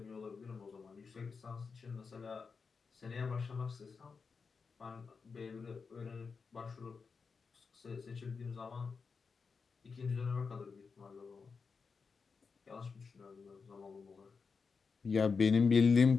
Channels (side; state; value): right; quieter; 5.2 dB